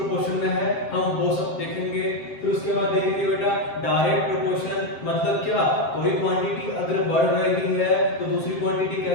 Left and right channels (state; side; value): late; right; 7.6 ms